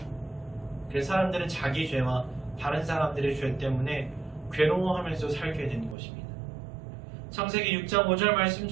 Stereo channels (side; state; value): left; drops out; at 6.0 s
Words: 그래서 사람들은 자기 죄와 다른 사람들의 죄 때문에 괴로워하면서 살게 된 것입니다. 창세기 6장 5절